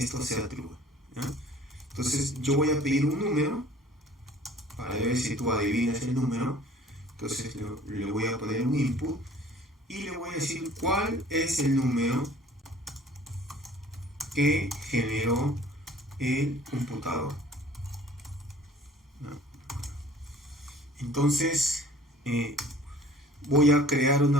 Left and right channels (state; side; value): normal; both; correlation 0.50